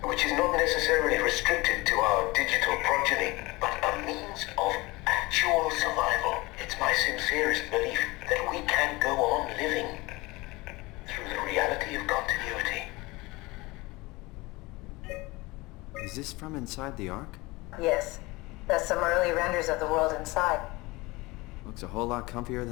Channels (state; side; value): quieter; right; 22.5 dB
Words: which is not necessarily restricted to our digital progeny, but a means of actual survival. It's my sincerest belief that we can go on living through the reality of continuity. Is this from inside the Ark? Yes. That's some early renders of the world inside. Looks a whole lot comfier